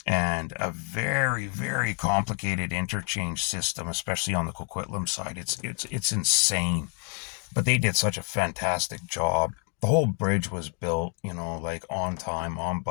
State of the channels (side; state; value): right; quieter; 39.2 dB